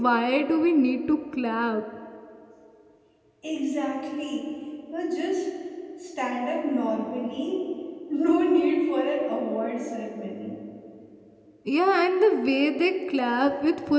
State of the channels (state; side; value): identical; both; correlation 1.00